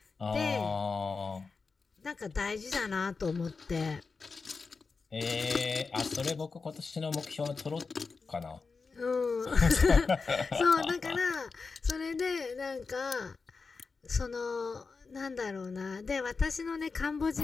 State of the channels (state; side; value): quieter; right; 4.6 dB